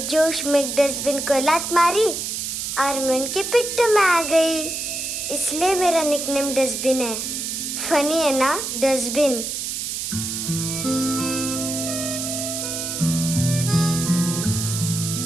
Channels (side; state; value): right; noise; hiss, 4 dB below the sound